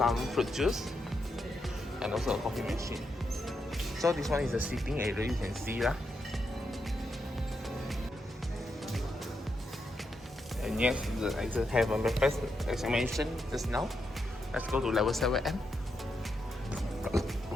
fruit juice. And also a coffee machine. So this one is the seating area, you can see lah. And yes, I just have a breakfast as I mentioned just now. Let's go to level 7M.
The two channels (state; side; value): normal; both; correlation 0.83